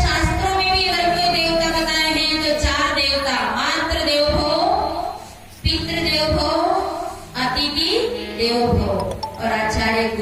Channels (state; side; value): identical; both; correlation 1.00